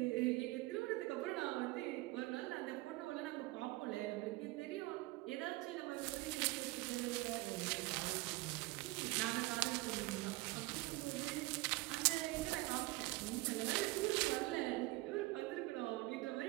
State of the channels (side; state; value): left; quieter; 21.4 dB